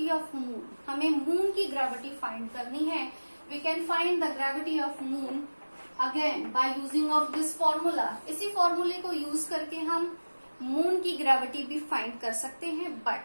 of moon. हमें moon की gravity find करनी है. We can find the gravity of moon again by using of this formula. इसी फॉर्मूले को use करके हम moon की gravity भी find कर सकते हैं.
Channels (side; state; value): both; inverted; correlation -1.00